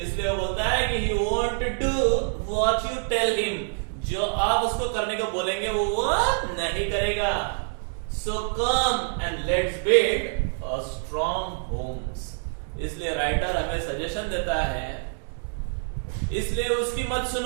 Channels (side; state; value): left; silent; digital silence